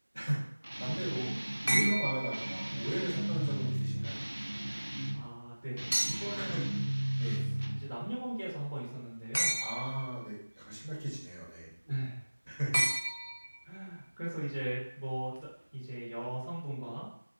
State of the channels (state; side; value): inverted; both; correlation -1.00